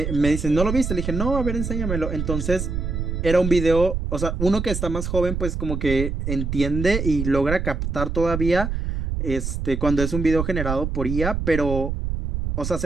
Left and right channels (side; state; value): right; noise; rumble, 3 dB below the sound